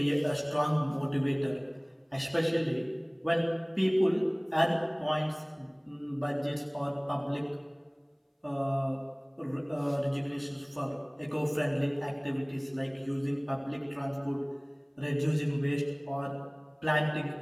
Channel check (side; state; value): both; identical; correlation 1.00